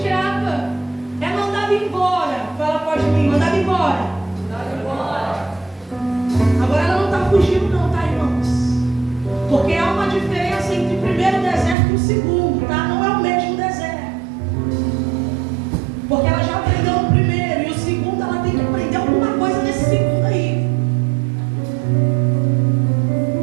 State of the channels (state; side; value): drops out; left; at 11.8 s